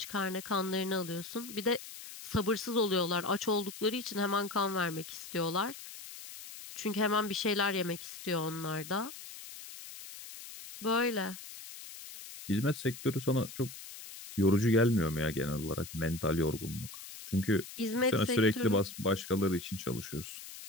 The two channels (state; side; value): noise; left; hiss, 13 dB below the sound